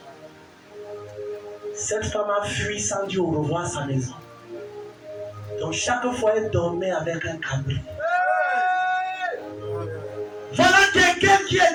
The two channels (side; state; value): both; identical; correlation 1.00